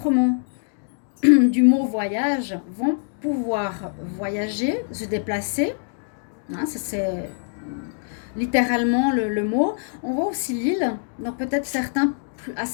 du mot voyage, vont pouvoir voyager, se déplacer. Hein, c'est littéralement le mot. On voit aussi l'île, donc peut-être certains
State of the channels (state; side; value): silent; right; digital silence